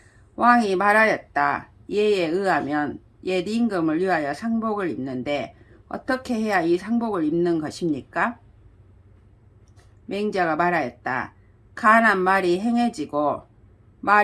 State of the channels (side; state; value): both; identical; correlation 1.00